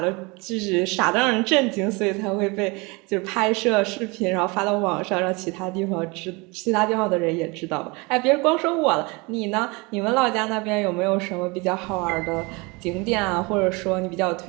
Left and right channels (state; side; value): quieter; left; 26.9 dB